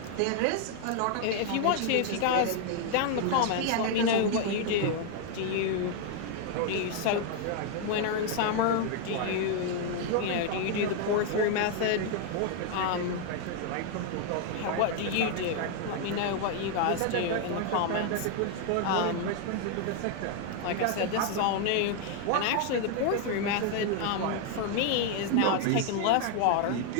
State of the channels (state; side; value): different; both; correlation 0.00